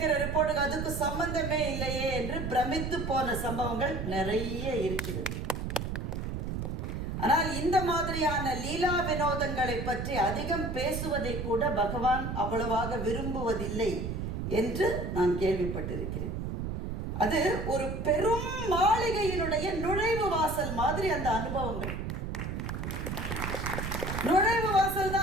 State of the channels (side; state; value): right; noise; rumble, 4 dB below the sound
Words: ரிப்போர்ட்டுக்கு அதுக்கு சம்பந்தமே இல்லையே என்று பிரமித்து போன சம்பவங்கள் நிறைய இருக்கிறது. ஆனால் இந்த மாதிரியான லீலா வினோதங்களை பற்றி அதிகம் பேசுவதை கூட பகவான் அவ்வளவாக விரும்புவதில்லை என்று நான் கேள்விப்பட்டிருக்கிறேன். அது ஒரு பெரும் மாளிகையினுடைய நுழைவு வாசல் மாதிரி அந்த அனுபவங்கள். நுழைவு வாசல்